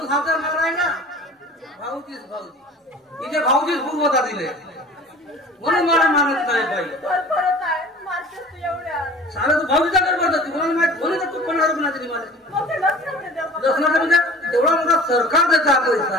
हा तर मला ना भाऊजीच इथे भाऊजीच पूर्वता दिले म्हणून मला मानत नाही बाई सारा तू भाऊजीचा घर भरतो तुम्हाला माहित म्हणून तू 15 रुपये तरी मला लसणाचा म्हणजे तेवढा मोठा सरकार देता पैसा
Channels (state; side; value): normal; both; correlation 0.43